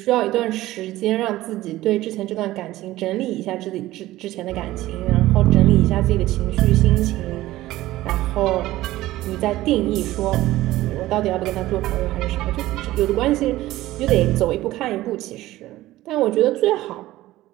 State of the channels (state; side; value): quieter; left; 16.3 dB